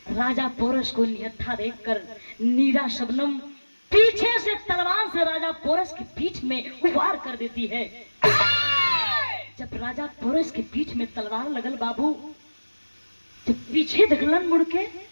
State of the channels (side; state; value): both; inverted; correlation -1.00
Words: राजा पोरस को निहत्था देखकर नीरा शबनम पीछे से तलवार से राजा पोरस की पीठ में वार कर देती है। जब राजा पोरस के पीठ में तलवार लगल बाबू, जब पीछे देखलन मुड़ के